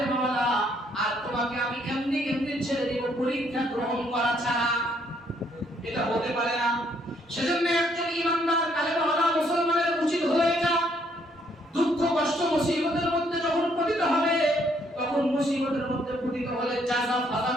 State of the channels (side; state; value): both; normal; correlation 0.69